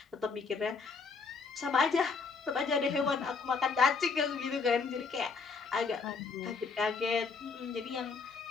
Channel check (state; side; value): quieter; right; 4.8 dB